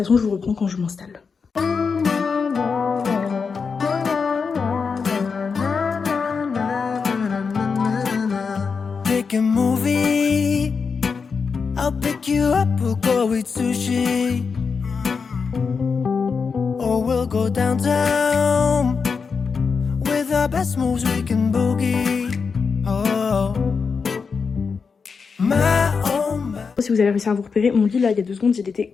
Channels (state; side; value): quieter; right; 5.4 dB